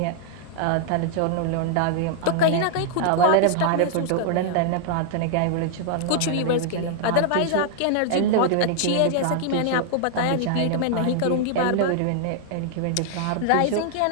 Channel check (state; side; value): different; both; correlation 0.00